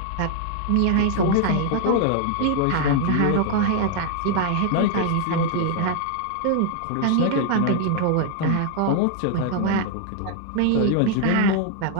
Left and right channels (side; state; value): both; different; correlation 0.00